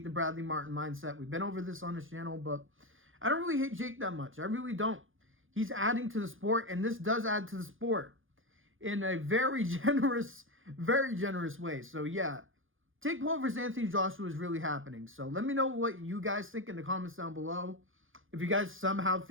the Bradley Martin mindset. We've been over this on this channel. But I don't really hate Jake that much. I really don't. He's adding to the sport. And this does add to the sport in a very generous way. So yeah, Jake Paul versus Anthony Joshua is really happening. So let me know what you guys think in the comments down below. If you guys somehow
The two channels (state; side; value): late; left; 0.58 ms